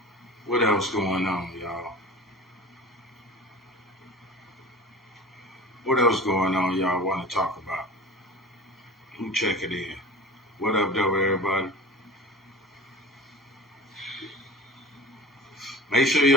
What else going on, y'all? What else going on y'all want to talk about? Who check it in? What up, though, everybody? Make sure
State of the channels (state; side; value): normal; both; correlation 0.37